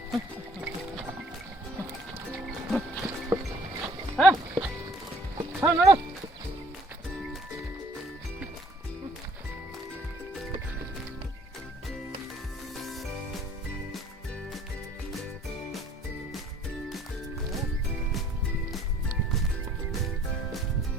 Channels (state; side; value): normal; both; correlation 0.57